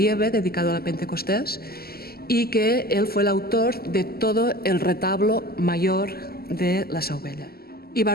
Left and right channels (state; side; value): late; right; 0.45 ms